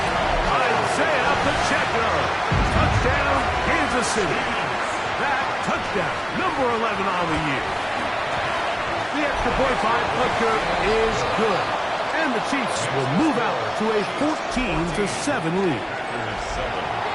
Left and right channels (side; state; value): both; identical; correlation 1.00